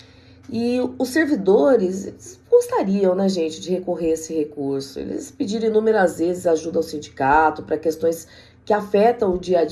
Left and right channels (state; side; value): identical; both; correlation 1.00